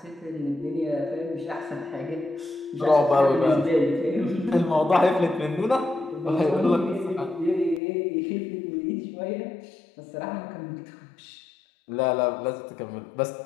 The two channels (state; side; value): drops out; right; at 7.8 s